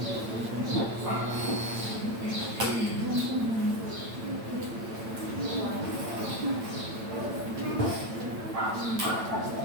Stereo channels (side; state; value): left; late; 8.9 ms